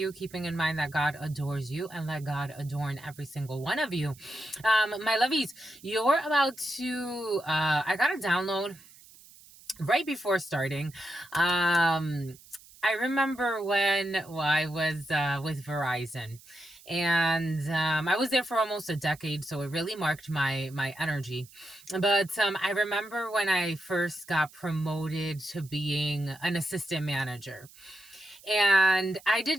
keeping in mind that God adores you and let God adorn every single one of you. My lovies, you're about to, I got a download right before starting. I remember when I was with Verizon, and I was there for almost a decade, so it really marked my energy. But I remember when I first got promoted to being an assistant manager. And I did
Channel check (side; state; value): right; noise; hiss, 23 dB below the sound